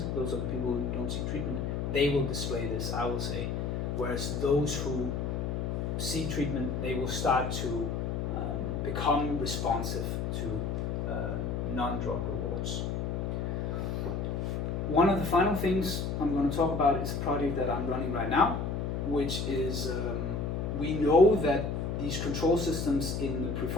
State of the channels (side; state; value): left; noise; hum, 1 dB below the sound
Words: those are the people who don't seek treatment, they will display this, I will say. Whereas those who seek treatment, they will start to become responsive to non-drug rewards. One of the final things I'm going to talk about is a project that I'm running right now, which is we know that these control systems in the